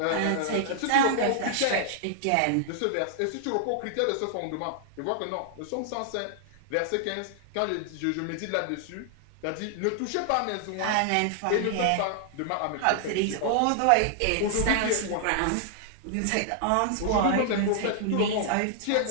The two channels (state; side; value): different; both; correlation -0.01